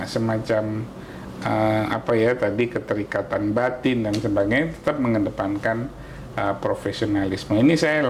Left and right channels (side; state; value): both; identical; correlation 1.00